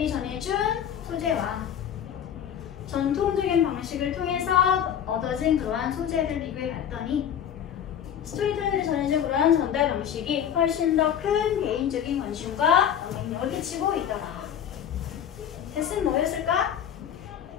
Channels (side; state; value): right; quieter; 9.2 dB